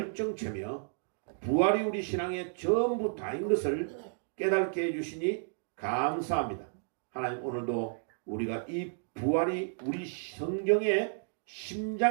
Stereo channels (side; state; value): left; silent; digital silence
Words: 부활이 우리 신앙의 전부 다인 것을 깨닫게 해주시니 감사합니다. 하나님 오늘도 우리가 이 부활이 우리 성경의